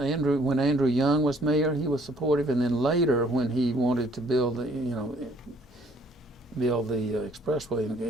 when Andrew Young was mayor, he was supportive, and then later when he wanted to build the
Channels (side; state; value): both; normal; correlation 0.61